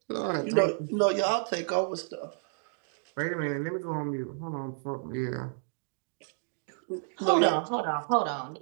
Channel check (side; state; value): left; silent; 57 dB below the other